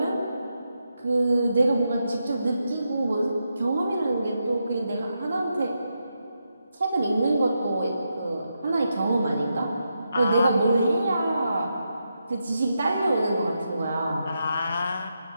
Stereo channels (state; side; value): inverted; both; correlation -0.85